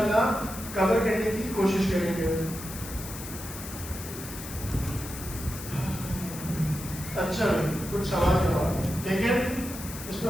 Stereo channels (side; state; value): left; noise; hiss, 11 dB below the sound